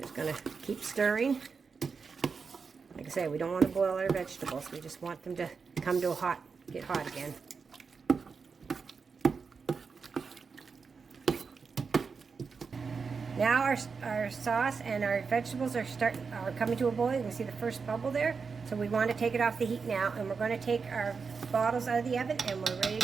just going to keep stirring. Like I say, we don't want to boil our vegetables. We just want them to come to a get hot again. Now our sauce and our vegetables are coming to a boil. You can see the first bubble there. So we want to take it off the heat now, and we're going to take our bottles out of the oven, and we're ready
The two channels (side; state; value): left; quieter; 5.2 dB